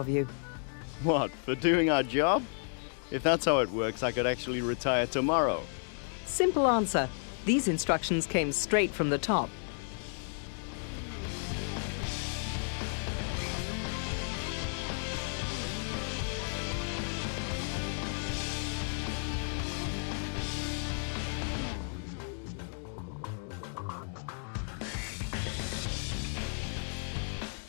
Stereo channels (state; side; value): silent; right; 56 dB below the other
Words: you. What, for doing our job? If that's how it works, I could actually retire tomorrow. Simple answer. These instructions came straight from the top.